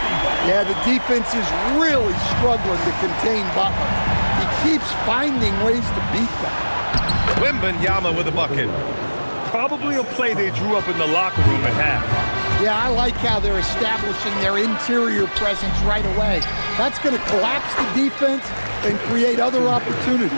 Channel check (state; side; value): inverted; both; correlation -1.00